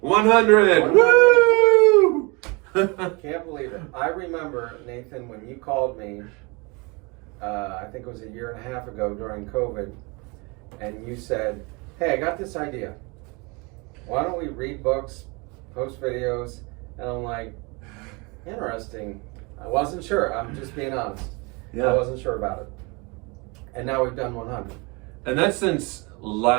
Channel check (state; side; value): quieter; left; 28.4 dB